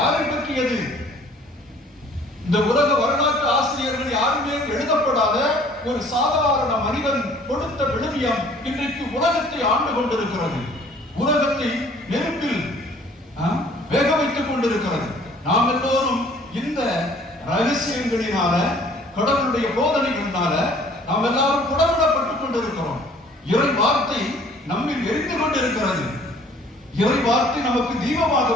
பற்றியது? இந்த உலக வரலாற்று ஆசிரியர்கள் யாருமே எழுதப்படாத ஒரு சாதாரண மனிதன் கொடுத்த விழுமியம் இன்றைக்கு உலகத்தை ஆண்டு கொண்டிருக்கிறது. உலகத்தை நெருப்பில் வேக வைத்துக் கொண்டிருக்கிறது. நாம் எல்லோரும் இந்த ரகசியங்களினால, கடவுளுடைய போதனைகளினால நாம் எல்லாரும் குடவிடப்பட்டுக் கொண்டிருக்கிறோம். இறை வார்த்தை நம்மில் எரிந்து கொண்டிருக்கிறது. இறை வார்த்தை நமக்கு தீபமாக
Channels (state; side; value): normal; both; correlation 0.55